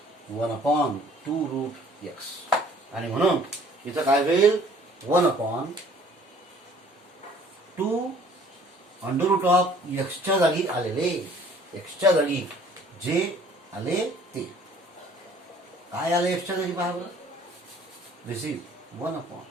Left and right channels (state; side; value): normal; both; correlation 0.55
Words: 1 अपॉन 2 रूट एक्स आणि म्हणून इथं काय होईल 1 अपॉन 2 अंडर रूट ऑफ एक्सच्या जागी आलेले एक्सच्या जागी जे आले ते काय आले एक्सच्या जागी पहा बरं. This is 1 upon